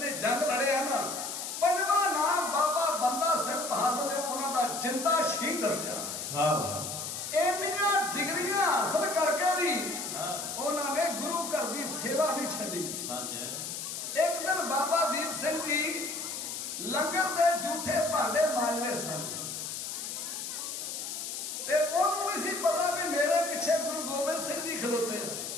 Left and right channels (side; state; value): left; noise; hiss, 5 dB below the sound